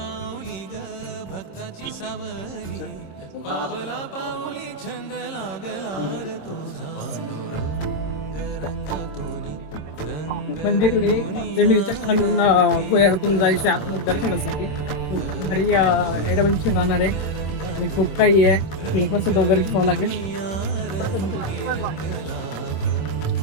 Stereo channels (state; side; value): late; right; 26 ms